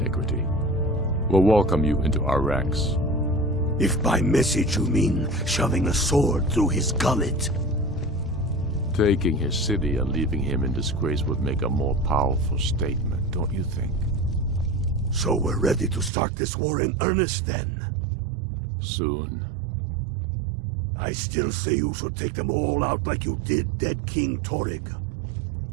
we'll welcome you into our ranks. If by message you mean shoving a sword through his gullet. Taking his city and leaving him in disgrace would make a more powerful statement, don't you think? So we're ready to start this war in earnest then? Soon. I still say you should take them all out like you did dead King Torrig.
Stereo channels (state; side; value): drops out; left; at 16.1 s